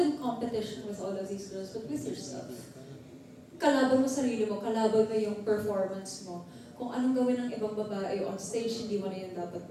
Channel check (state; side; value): identical; both; correlation 1.00